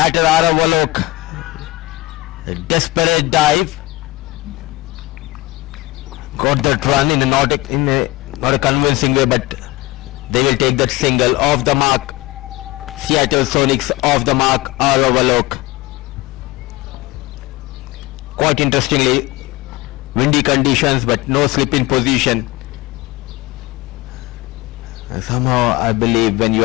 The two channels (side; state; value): right; quieter; 20.2 dB